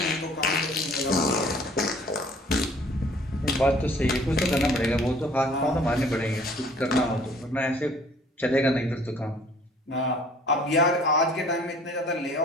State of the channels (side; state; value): both; normal; correlation 0.54